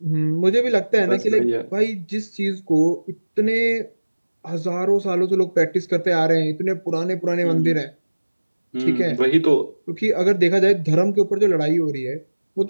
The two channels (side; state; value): both; inverted; correlation -1.00